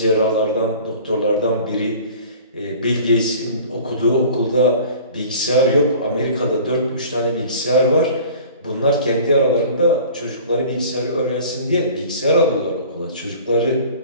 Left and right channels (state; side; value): inverted; both; correlation -0.44